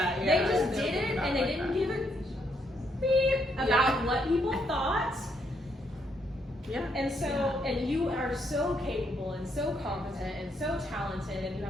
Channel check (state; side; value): normal; both; correlation 0.74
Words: They just did it, and they didn't give a beep about what people thought. And so, and you are so capable and so competent and so talented, and you